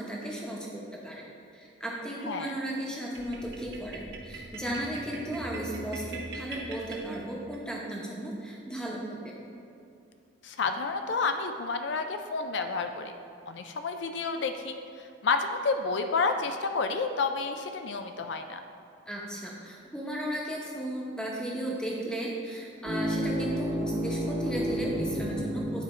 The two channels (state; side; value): normal; both; correlation 0.24